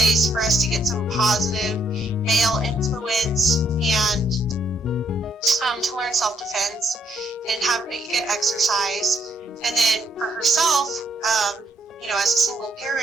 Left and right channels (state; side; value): normal; both; correlation 0.72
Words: for us to get some positive male influence and to learn self-defense and get exercise. And then for herself, as a single